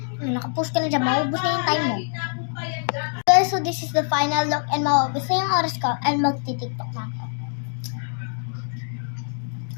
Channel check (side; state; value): right; silent; digital silence